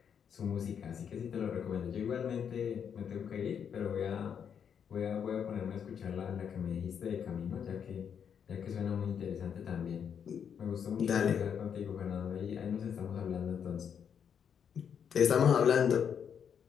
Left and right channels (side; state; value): right; quieter; 7.7 dB